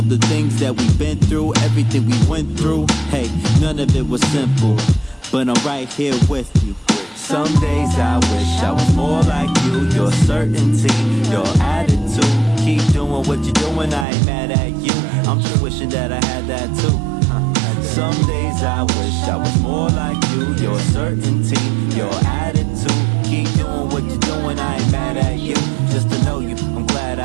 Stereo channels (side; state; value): left; drops out; at 14.1 s